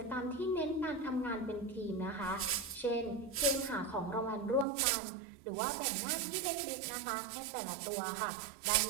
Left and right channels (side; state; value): left; drops out; at 4.7 s